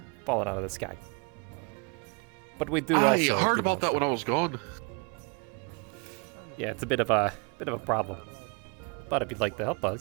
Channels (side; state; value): left; quieter; 32.4 dB